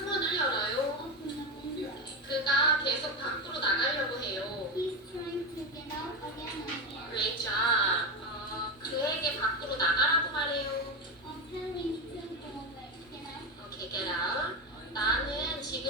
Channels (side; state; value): both; normal; correlation 0.14